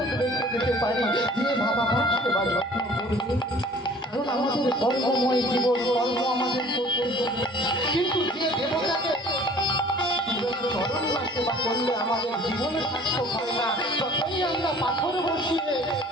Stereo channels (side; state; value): both; normal; correlation 0.50